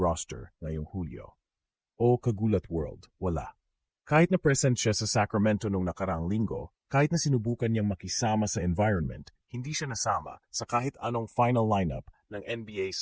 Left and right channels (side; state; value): both; identical; correlation 1.00